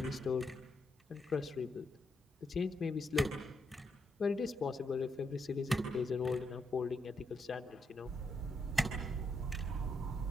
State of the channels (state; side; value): normal; both; correlation 0.80